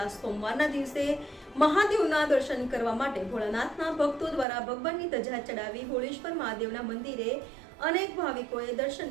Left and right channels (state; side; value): drops out; left; at 4.5 s